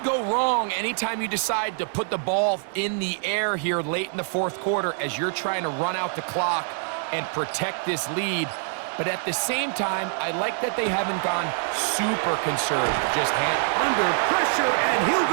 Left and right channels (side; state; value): left; silent; 62 dB below the other